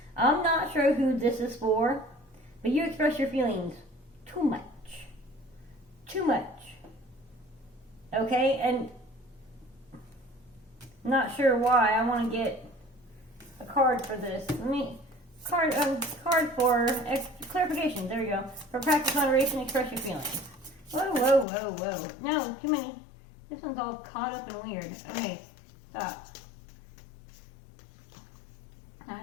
I'm not sure who this is for, but you express your feelings too much. Too much. Okay, and I'm not sure why. I want to get a card for this. Card for clarification. There you go. For practice moderation, express your feelings. Whoa, whoa, whoa, whoa. No, too many. This one's all caught up and weird. Okay, stop. I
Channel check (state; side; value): drops out; right; at 21.5 s